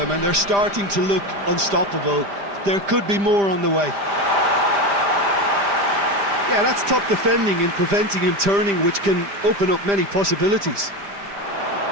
and they're starting to look unstoppable. There could be more on the way. Yeah, that's top defending and preventing him turning, which can open up many possibilities.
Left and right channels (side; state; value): left; late; 5.0 ms